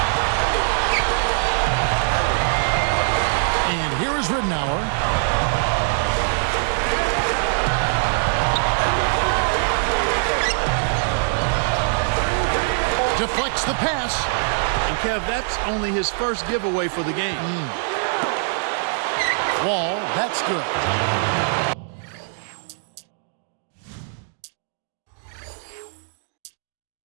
And here is Ridnour. Deflects the pass. And Kev, that's only his first giveaway for the game. Wall, that's good.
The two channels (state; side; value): silent; left; digital silence